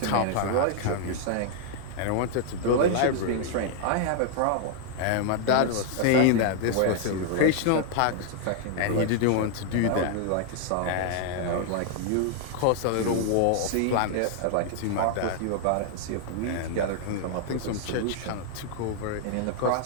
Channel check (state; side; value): different; both; correlation 0.00